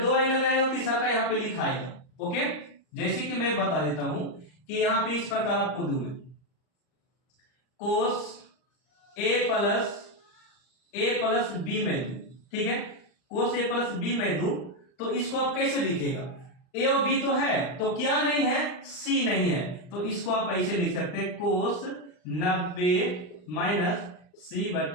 दो एंगल रहेगा, तीसरा का यहाँ पे लिखा आएगा, ओके। जैसे कि मैं बता देता हूं कि यहाँ पे इस प्रकार आपको दूं मैं कोस ए प्लस बी में दूं, ठीक है, कोस ए प्लस बी में दूं, तो इसको आप कैसे लिखेगा, ए और बी तो है, तो क्या नहीं है, सी नहीं है, तो इसको आप ऐसे लिख सकते हैं कोस 90 माइनस सी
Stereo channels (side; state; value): right; late; 39 ms